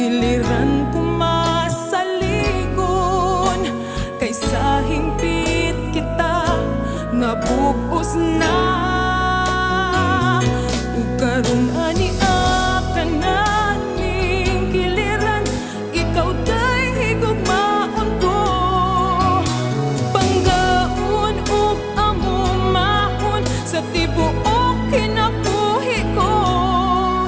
kumasaligon, kay sa hingpit kita nabubos na. Ug karong ania ka na ning kiliran, ikaw dahi gugmaon ko. Panggaon ug amumahon sa tibuok kinabuhi ko.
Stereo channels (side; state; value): both; identical; correlation 1.00